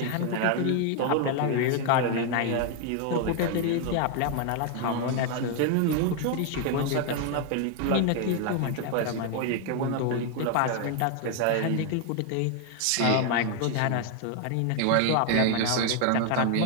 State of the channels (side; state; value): both; different; correlation 0.01